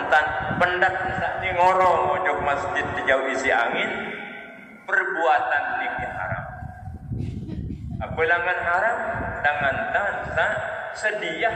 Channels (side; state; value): both; identical; correlation 1.00